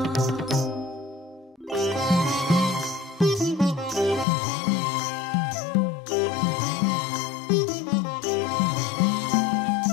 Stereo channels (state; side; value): drops out; right; at 4.2 s